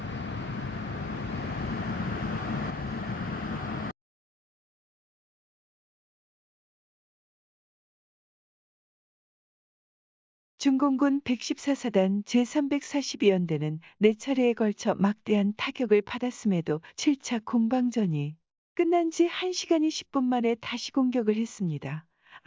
중공군 114사단 제342연대는 4차례에 걸쳐 막대한 타격을 받았음에도 7차 공방전이 끝난 지 1시간이 10분 만에 다시 공격을 했습니다.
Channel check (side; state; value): both; normal; correlation 0.96